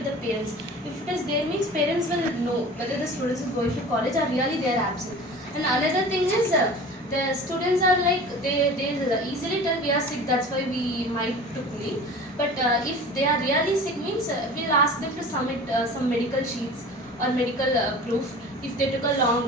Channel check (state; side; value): normal; both; correlation 0.39